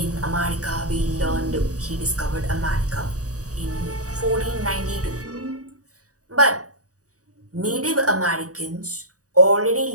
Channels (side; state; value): left; late; 0.66 ms